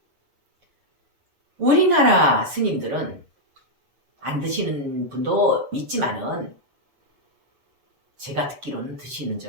우리나라 스님들은 안 드시는 분도 있지만은 제가 듣기로는 드시는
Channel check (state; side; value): late; left; 7.6 ms